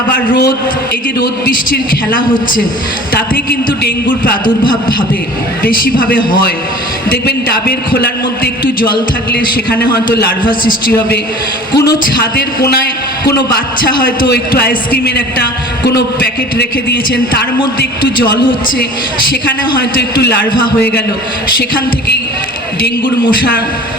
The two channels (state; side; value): normal; both; correlation 0.43